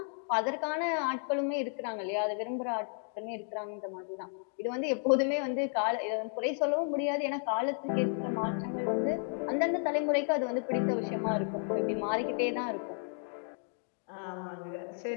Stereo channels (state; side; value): silent; right; 56 dB below the other